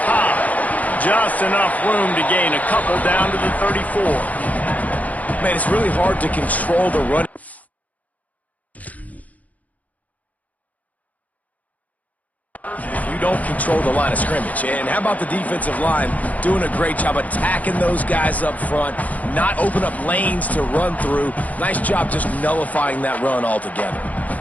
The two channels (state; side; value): late; right; 0.074 ms